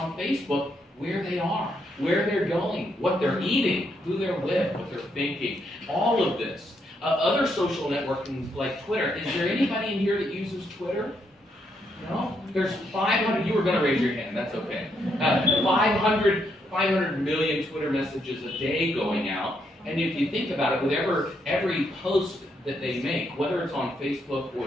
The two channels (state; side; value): normal; both; correlation 0.77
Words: Facebook where they are, where they're going, what they're eating, who they're with, what they're thinking, all of this. Other social networking like Twitter. Is there anybody in here that uses Twitter? No? There's 500, you were going to raise your hand, that's okay. 500 million Twitter messages a day going out. And if you think about it, with every post that they make, whether it's on Facebook